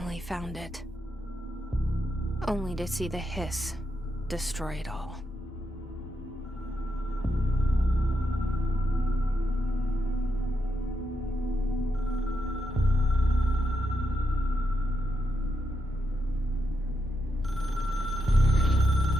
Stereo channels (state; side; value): normal; both; correlation 0.83